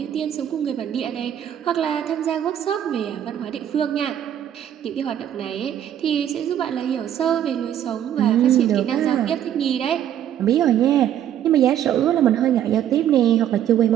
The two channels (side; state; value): left; quieter; 10.5 dB